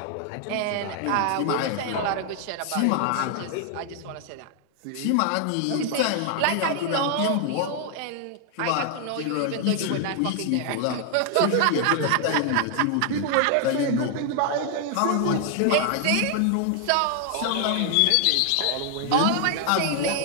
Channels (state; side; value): different; both; correlation 0.00